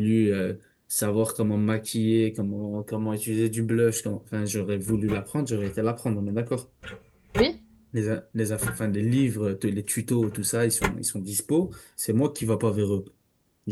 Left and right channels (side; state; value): both; identical; correlation 1.00